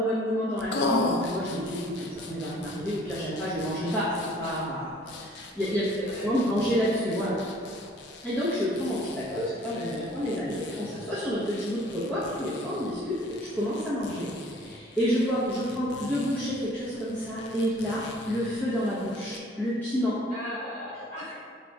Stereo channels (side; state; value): both; normal; correlation 0.54